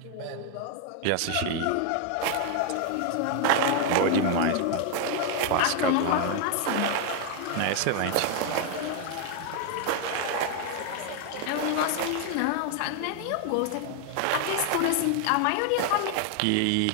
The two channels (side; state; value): both; different; correlation 0.00